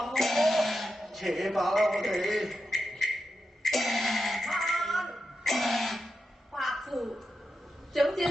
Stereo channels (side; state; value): both; normal; correlation 0.88